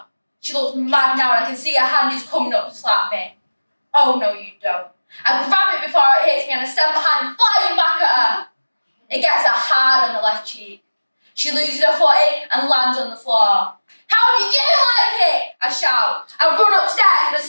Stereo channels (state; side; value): inverted; both; correlation -1.00